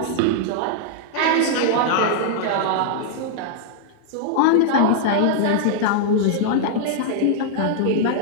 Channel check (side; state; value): both; different; correlation -0.01